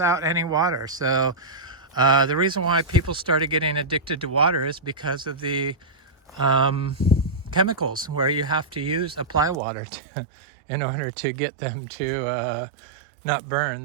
any water. So the reason why people started getting addicted to water is because of the chemicals, where you have to apply water in order to get them to not burn.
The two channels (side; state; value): left; drops out; at 9.6 s